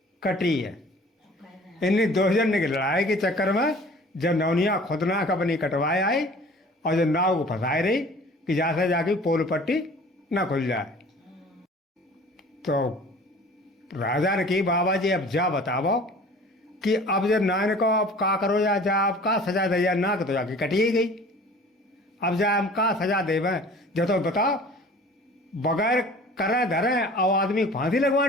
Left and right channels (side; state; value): both; normal; correlation 0.46